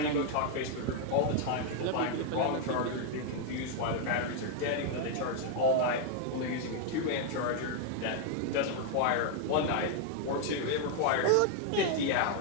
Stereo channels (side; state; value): both; different; correlation 0.00